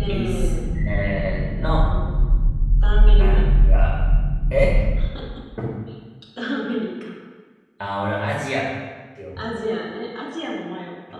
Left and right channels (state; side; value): identical; both; correlation 1.00